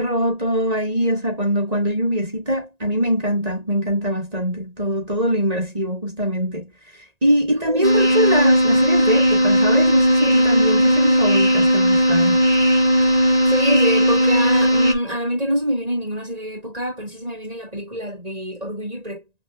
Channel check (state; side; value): late; left; 1.9 ms